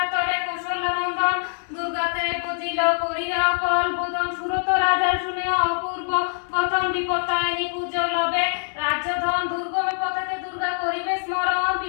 তরে কৌশল্য নন্দন, দুর্গাতে বুঝিল করিয়া কল বোধন, সুরত রাজার শুনে অপূর্ব গতন, বিপত্তায়নি পূজো লবে রাজ্যধন, দুর্গমে পথেতে দুর্গা করিবে স্মরণ,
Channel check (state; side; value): silent; right; 63 dB below the other